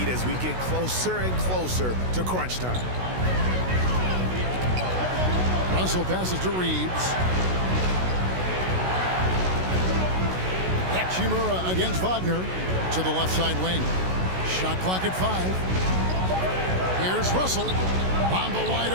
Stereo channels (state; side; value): late; left; 16 ms